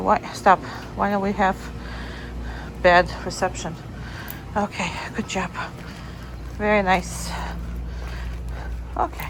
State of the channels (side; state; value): both; identical; correlation 1.00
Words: Stop. Why don't we have bad reception? Okay, good job. Very nice. Okay.